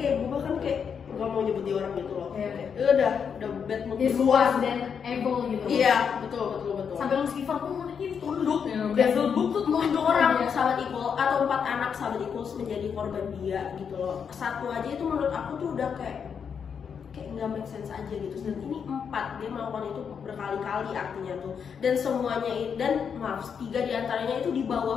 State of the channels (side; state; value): right; quieter; 6.9 dB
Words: kayak gue bahkan kayak gak mau nyebut dia orang gitu loh. Udah bad mood luas dan evil gitu. Iya, betul. Sampai Lucifer pun mungkin tunduk ya. Devil tuh orang sahabat Equal atau 4 anak sahabat Equal menjadi korban dia gitu loh. Satu aja itu menurut aku tuh udah kayak nggak make sense aja gitu. Dan ini 4, dia melakukan itu berkali-kali artinya tuh. Dan semuanya dan 3 diantaranya itu di